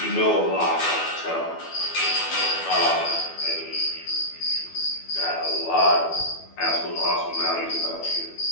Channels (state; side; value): late; right; 12 ms